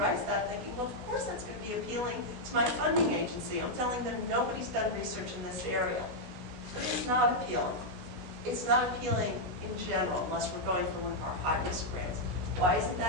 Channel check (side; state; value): left; late; 16 ms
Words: that thinking, well, of course that's going to be appealing to my funding agency. I'm telling them nobody's done research in this area. But it's not appealing. It's not appealing in general, unless we're going for one of our high-risk grants. Why isn't